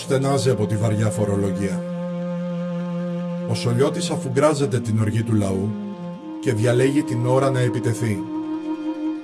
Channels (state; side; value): identical; both; correlation 1.00